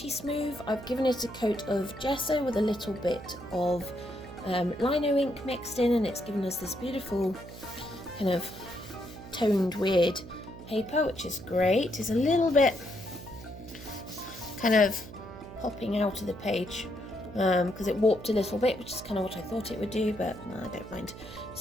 smooth. I've given it a coat of gesso with a little bit of lino ink mixed in, and it's given us this beautiful kind of toned weird paper, which is great. It's a little bit kind of popping out of the page because it warped a little bit, which is kind of what I thought it would do, but I don't mind.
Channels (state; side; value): noise; right; hum, 14 dB below the sound